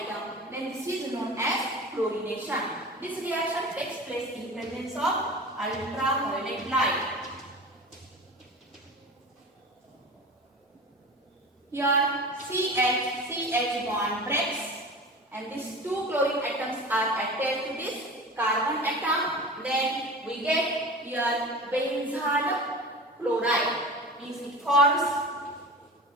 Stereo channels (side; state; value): both; normal; correlation 0.34